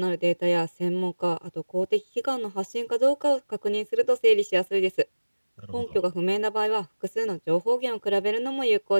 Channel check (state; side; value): inverted; both; correlation -1.00